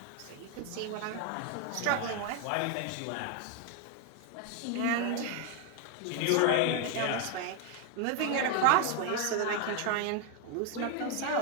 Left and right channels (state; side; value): different; both; correlation 0.01